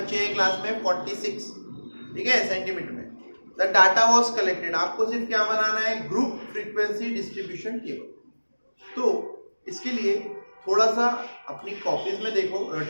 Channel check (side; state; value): both; inverted; correlation -1.00